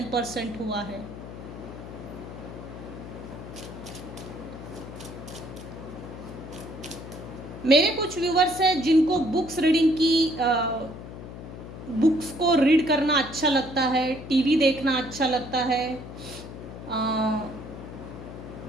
हुआ है। मेरे कुछ व्यूअर्स हैं जिनको बुक्स रीडिंग की बुक्स को रीड करना अच्छा लगता है, टीवी देखना अच्छा लगता है,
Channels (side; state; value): left; noise; hum, 12 dB below the sound